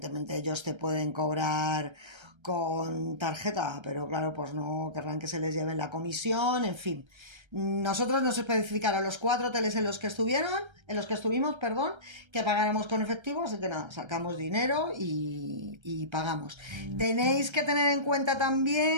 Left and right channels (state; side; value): late; left; 1.3 ms